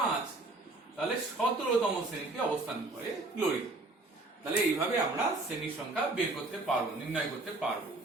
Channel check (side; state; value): left; quieter; 3.0 dB